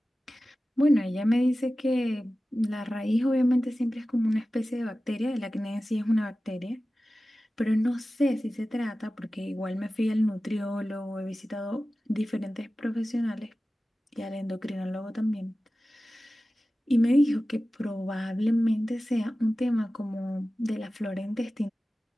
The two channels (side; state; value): both; normal; correlation 0.95